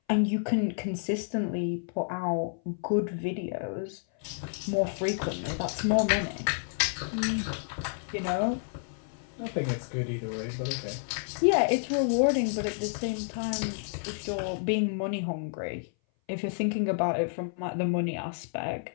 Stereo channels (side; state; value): right; silent; 57 dB below the other